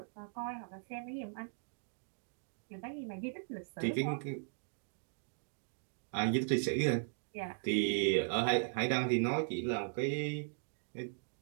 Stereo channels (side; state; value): left; silent; digital silence